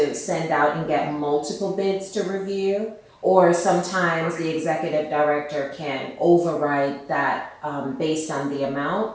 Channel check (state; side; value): identical; both; correlation 1.00